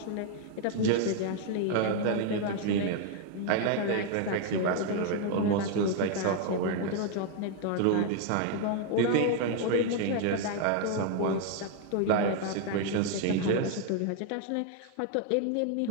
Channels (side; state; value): both; different; correlation 0.00